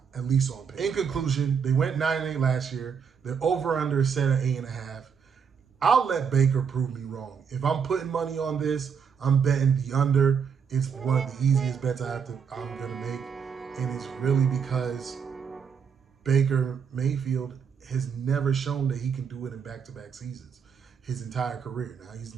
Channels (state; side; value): quieter; left; 6.6 dB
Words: at least on paper. In conclusion, they went 9-8 last year. Their over-under is set at 8.5. I'll let Baker prove me wrong. If I'm putting money on this, I'm betting the under. It's one of the easiest bets I'm going to make. And it's really because Baker Mayfield has never shown that he can do it in back-to-back seasons his entire career. Now, he's